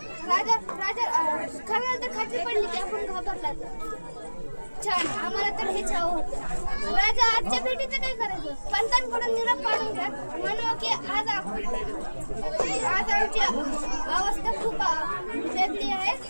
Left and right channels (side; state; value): both; inverted; correlation -1.00